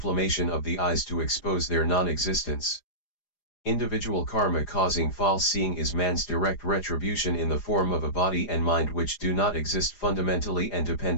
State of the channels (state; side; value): late; right; 4.9 ms